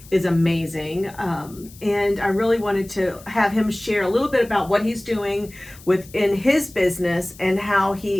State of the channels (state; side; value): noise; left; hiss, 22 dB below the sound